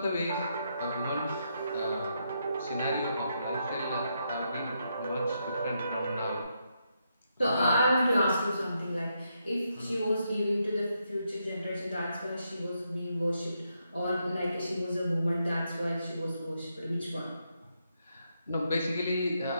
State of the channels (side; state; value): both; inverted; correlation -0.80